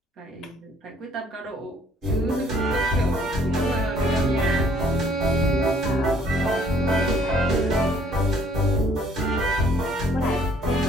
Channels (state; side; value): normal; both; correlation 0.61